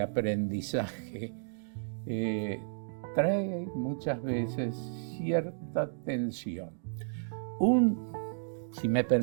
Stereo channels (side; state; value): left; silent; digital silence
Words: Trae muchas veces cierta tensión. Si me